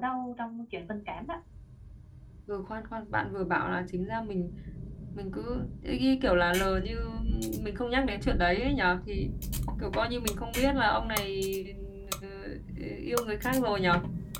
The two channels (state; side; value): identical; both; correlation 1.00